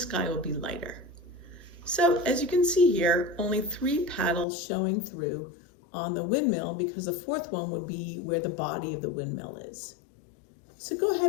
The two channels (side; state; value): right; drops out; at 4.5 s